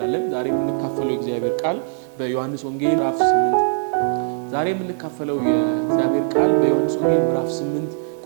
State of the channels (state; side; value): silent; left; digital silence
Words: ዛሬም እንካፈለው የእግዚአብሔር ቃል በዮሐንስ ወንጌል ምዕራፍ 8 ዛሬ የምንካፈለው የእግዚአብሔር ቃል በዮሐንስ ወንጌል ምዕራፍ 8